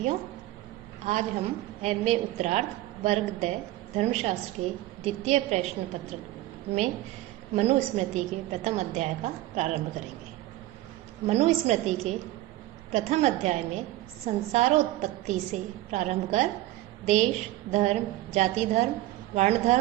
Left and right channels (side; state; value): left; quieter; 16.0 dB